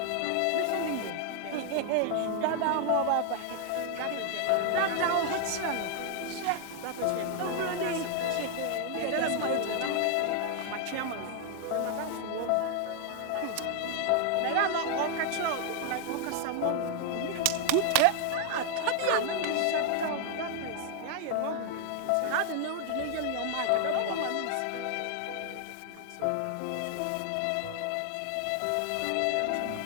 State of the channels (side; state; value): both; different; correlation 0.00